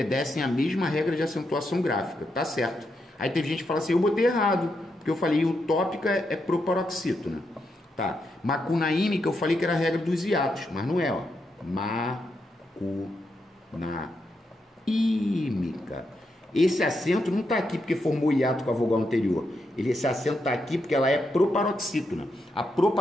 à mesma regra de acentuação gráfica. Tá certo. Aí teve gente que fala assim, eu botei errado, porque eu falei utópica é proparoxítona. Tá. Macunaímica eu falei que era a regra dos hiatos, mas não é, ó. Macunaímica. Esse acento não está aqui porque formou hiato com a vogal anterior. Esse acento está aqui porque ela é proparoxítona. A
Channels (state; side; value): normal; both; correlation 0.83